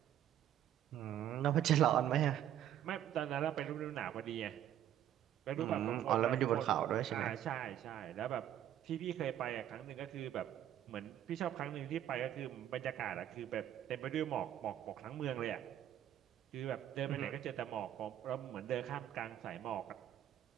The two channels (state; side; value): quieter; left; 11.3 dB